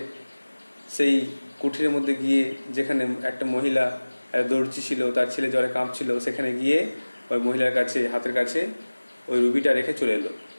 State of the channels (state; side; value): inverted; both; correlation -1.00